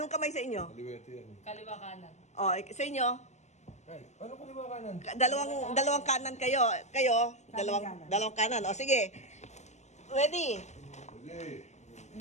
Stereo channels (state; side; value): late; right; 0.33 ms